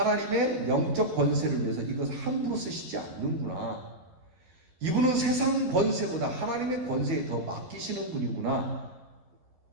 영적 권세를 위해서 이것을 함부로 쓰시지 않는구나. 이분은 세상 권세보다 하나님의 권세에 더 맡기시는 분이구나.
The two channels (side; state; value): left; late; 12 ms